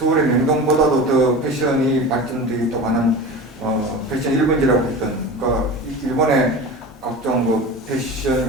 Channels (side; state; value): both; normal; correlation 0.31